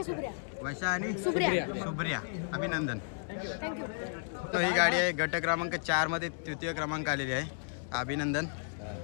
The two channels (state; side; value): silent; right; 56 dB below the other